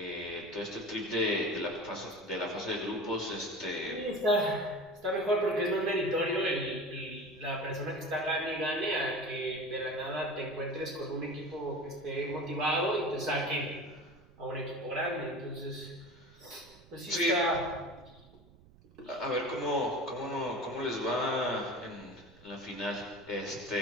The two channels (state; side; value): noise; right; rumble, 25 dB below the sound